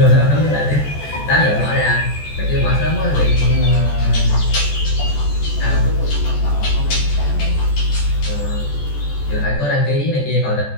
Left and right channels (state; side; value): late; right; 14 ms